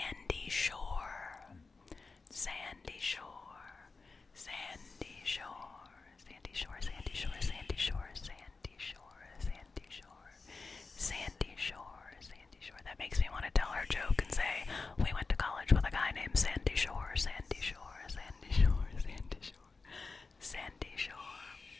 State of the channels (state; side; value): quieter; right; 4.1 dB